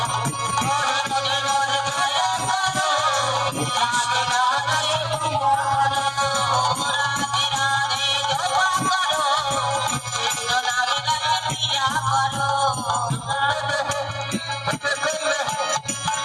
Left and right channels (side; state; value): both; identical; correlation 1.00